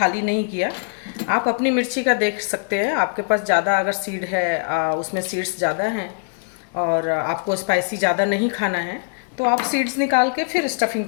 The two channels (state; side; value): silent; right; 64 dB below the other